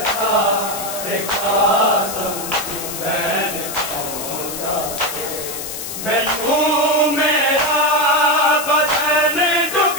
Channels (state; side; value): noise; left; hiss, 7 dB below the sound